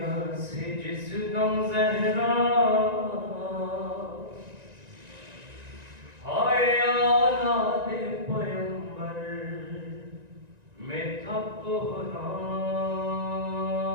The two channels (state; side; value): late; left; 1.9 ms